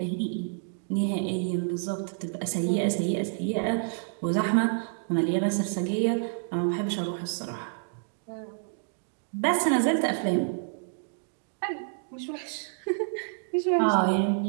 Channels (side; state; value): left; silent; digital silence